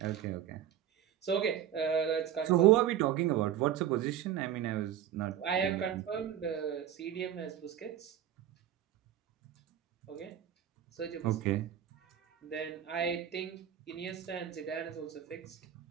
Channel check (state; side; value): quieter; left; 10.2 dB